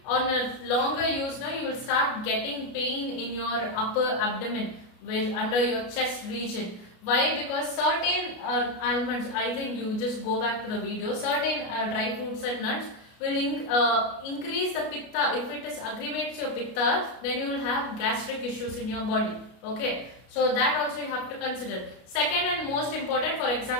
on a longer use, you will start getting pain in your upper abdomen, under your chest region. Why? Because certain almonds, I think you just go back to the video, certain dry fruits and nuts will increase the pitta. If it aggravates your pitta, then you will have gastric issues in your body. Okay, so that also you have to consider. Second and most important, for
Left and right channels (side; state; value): right; late; 33 ms